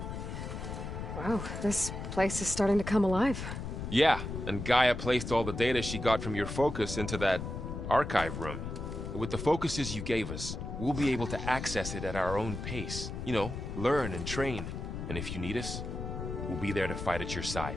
Wow, this place is starting to come alive. Yeah, and Gaia placed all the data she got from your focus into that archive room. With the focuses you gave us, we'll be able to access it at our own pace. You know, learn and train. And if you need us, we'll be there to fight at your side.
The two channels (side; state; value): left; noise; rumble, 6 dB below the sound